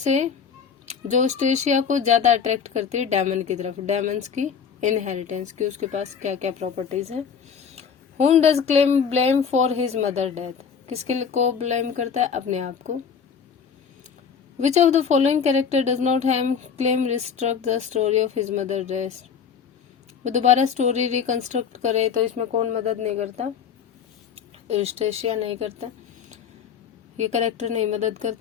जो स्टेशिया को ज्यादा अट्रैक्ट करती है डेमन की तरफ? डेमन्स की इनहेरिटेंस की, उसके पास क्या क्या प्रॉपर्टीज हैं। Whom does Clem blame for his mother death? किसके को ब्लेम करता है? अपने आप को। Which of the following character does not have Clem reconstruct the story of his mother death? वो दोबारा स्टोरी रिकंस्ट्रक्ट करे तो इसमें कौन मदद नहीं करता? यूस्टेशिया नहीं करता, ये कैरेक्टर नहीं मदद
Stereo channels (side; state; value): right; quieter; 6.8 dB